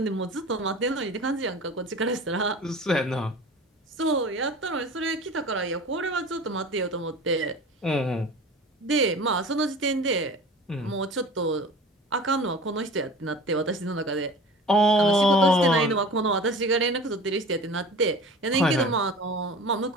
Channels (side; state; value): both; normal; correlation 0.38